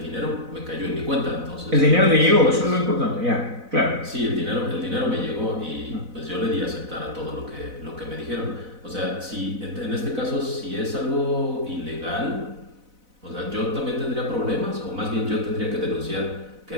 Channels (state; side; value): late; left; 4.0 ms